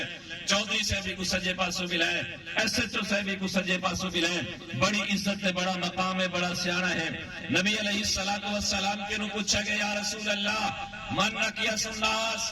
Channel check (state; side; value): identical; both; correlation 1.00